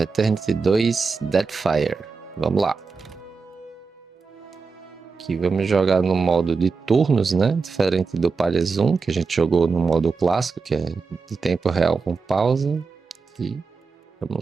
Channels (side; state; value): left; quieter; 4.7 dB